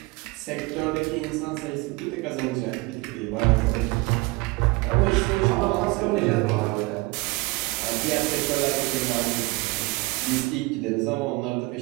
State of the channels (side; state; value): left; quieter; 24.5 dB